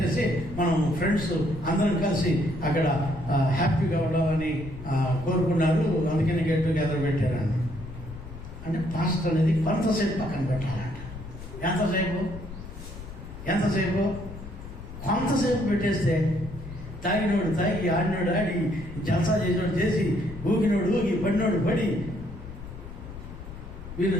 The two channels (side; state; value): left; noise; rumble, 12 dB below the sound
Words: మనం ఫ్రెండ్స్ అందరం కలిసి అక్కడ హ్యాపీగా ఉండాలని కోరుకున్నారు, అందుకని గెట్ టుగెదర్ పెట్టారన్న. అంటే పాస్టర్ అనేది కొంతసేపు పక్కన పెట్టాలంట. ఎంతసేపు? కొంతసేపు పెట్టేస్తే తాగినోడు తాగి, ఆడినోడు ఆడి, జల్సా చేసినోడు చేసి, ఊగినోడు ఊగి, పడినోడు పడి, వీళ్ళు